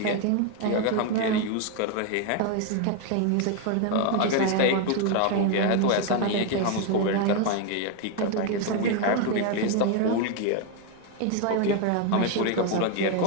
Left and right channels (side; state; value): both; different; correlation 0.01